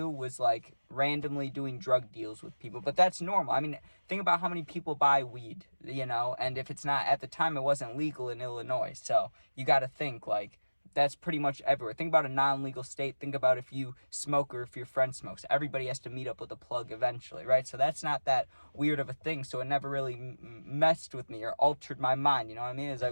was, like, randomly doing drug deals with people. But that's normal. I mean, think about how many people buy weed, and if it's not, at the time, it wasn't legal in Illinois. So, you gotta think, like, that's pretty much everywhere. Think about a non-legal state. Think about if you smoke or if your friend smokes. Everybody has to meet up with a plug eventually, right? So that's not that weird of a thing. So it never really messed with me or altered my mind. You know what I mean? It's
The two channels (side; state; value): both; inverted; correlation -1.00